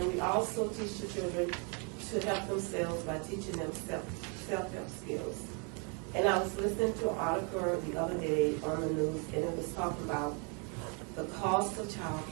we also teach the children to help themselves by teaching them self-help skills. And I was listening to an article the other day on the news, and it was talking about the cost of child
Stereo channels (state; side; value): quieter; left; 36.0 dB